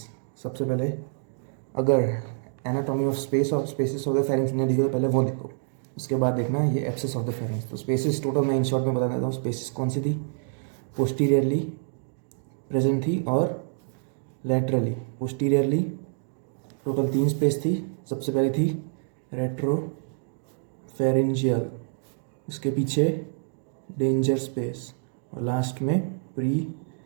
सबसे पहले अगर एनाटॉमी ऑफ स्पेस और स्पेसिस ऑफ द फेरिंग्स ने दिखे तो पहले वो देखो, उसके बाद देखना ये एब्सेस ऑफ द फेरिंग्स। तो स्पेसिस टोटल मैं इन शॉर्ट में बता देता हूँ। स्पेसिस कौन सी थी? पोस्टीरियरली प्रेजेंट थी और लैटरली। पोस्टीरियरली टोटल 3 स्पेस थी। सबसे पहले थी रेट्रो फेरिंजियल, उसके पीछे डेंजर स्पेस और लास्ट में प्री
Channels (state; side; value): silent; left; digital silence